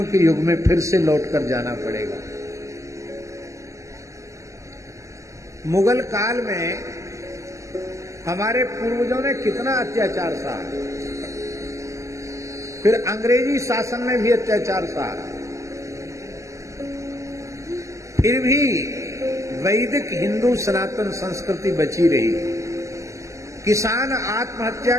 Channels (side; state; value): left; late; 0.15 ms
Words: के युग में फिर से लौटकर जाना पड़ेगा। मुगल काल में हमारे पूर्वजों ने कितना अत्याचार सहा, फिर अंग्रेजी शासन में भी अत्याचार सहा, फिर भी वैदिक हिंदू सनातन संस्कृति बची रही। किसान आत्महत्या